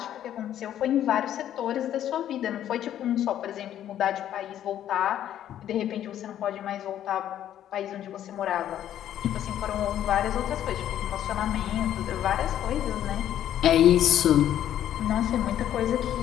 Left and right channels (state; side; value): quieter; right; 11.2 dB